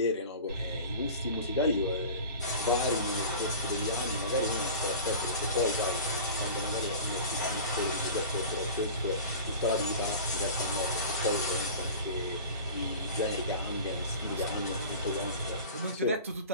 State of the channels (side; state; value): both; inverted; correlation -0.37